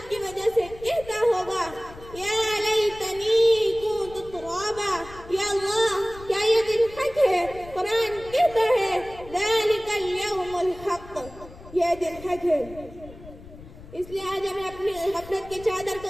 کی وجہ سے کہتا ہوگا یا لیتنی کنت ترابا، یا اللہ کیا یہ دن حق ہے؟ قرآن کہتا ہے ذالک الیوم الحق، یہ دن حق ہے۔ اس لیے آج ہمیں اپنی غفلت کی چادر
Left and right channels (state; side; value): noise; left; rumble, 18 dB below the sound